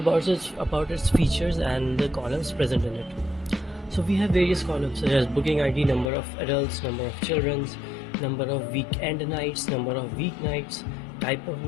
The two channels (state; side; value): drops out; right; at 6.1 s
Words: its features and the columns present in it. So we have various columns such as booking ID, number of adults, number of children, number of weekend nights, number of weeknights, type of